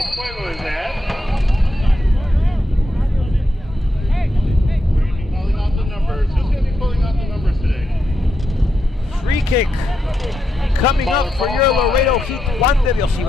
Fuego is at. We're going to be calling out the numbers. Who's going to be pulling out the numbers today? Free kick coming up for your Laredo Heat. Juan de Dios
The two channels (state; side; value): normal; both; correlation 0.84